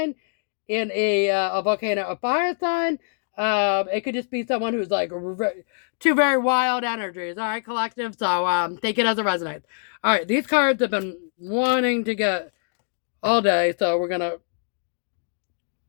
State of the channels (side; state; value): right; silent; digital silence